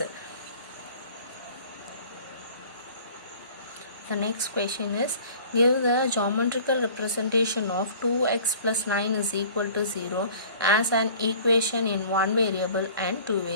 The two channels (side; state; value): both; inverted; correlation -0.48